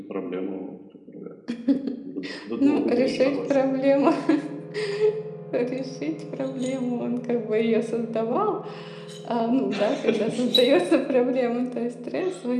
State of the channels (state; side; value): identical; both; correlation 1.00